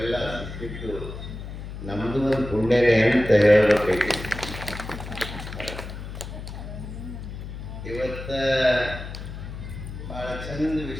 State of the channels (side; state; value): left; noise; hum, 9 dB below the sound